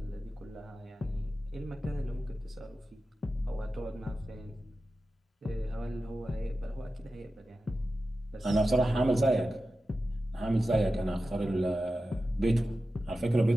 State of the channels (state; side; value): normal; both; correlation 0.93